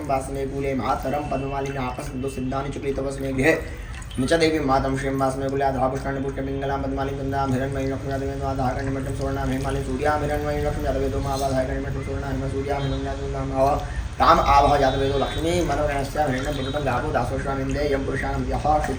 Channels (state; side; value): identical; both; correlation 1.00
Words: वासने कूले मातरं पद्ममालिनापसन्दो सिद्धानि चक्रितवस्मे गृहे निच देवी मातं श्रियं वासने कूले आधापुष्टानि पुष्टपिङ्गलां पद्मालिं गन्धां हिरण्मयीं लक्ष्मी यादवेदो आधाकर्णिमठं सुवर्णां हेमालिं सूर्यां हिरण्मयीं लक्ष्मी यादवेदो मावाधाकर्णिमठं सुवर्णां हेम सूर्यां हिरण्यां ताम आभः जातवेदो लक्ष्मी मनोगणस्या हिरण्यं पुरुषं गावो दासोश्वामिन्दे यं पुरुषाणं यः